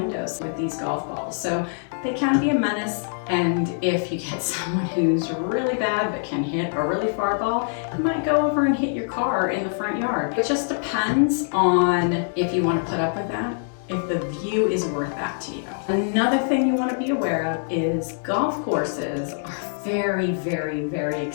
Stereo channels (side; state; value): right; silent; digital silence